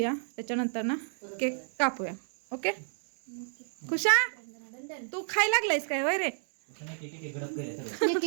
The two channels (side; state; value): left; silent; digital silence